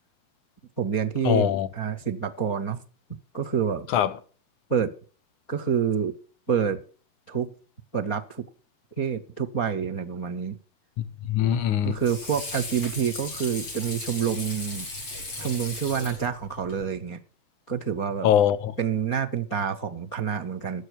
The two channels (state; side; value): late; right; 7.8 ms